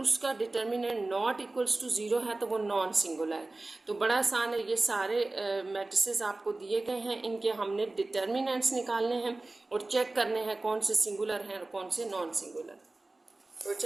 डिटर्मिनेंट नॉट इक्वल्स टू 0 है तो वो नॉन सिंगुलर है। तो बड़ा आसान है, ये सारे मैट्रिसेस आपको दिए गए हैं, इनके हमने डिटर्मिनेंट्स निकालने हैं और चेक करने हैं कौन से सिंगुलर हैं और कौन से नॉन सिंगुलर। तो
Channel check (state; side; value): quieter; left; 3.1 dB